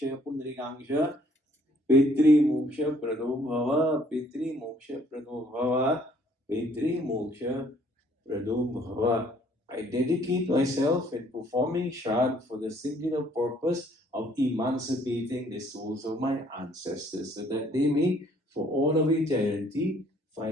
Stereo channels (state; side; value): normal; both; correlation 0.62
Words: Pundrikangsha Pitri Moksha Prado Bhava. Pitri Moksha Prado Bhava. Pitri Moksha Prado Bhava. I dedicate myself in performing Shraddh for the singular purpose of emancipating the souls of my ancestors so that they may, for all of eternity,